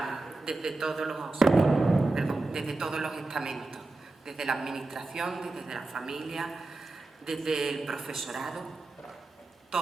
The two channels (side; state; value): left; quieter; 3.1 dB